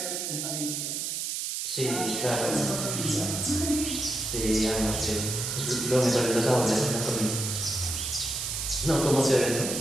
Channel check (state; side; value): noise; right; hiss, 3 dB below the sound